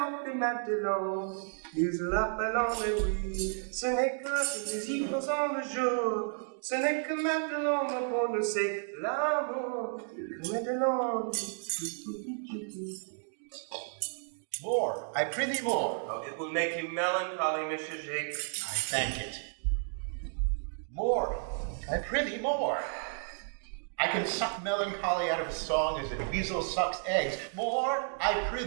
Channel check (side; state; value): left; silent; 56 dB below the other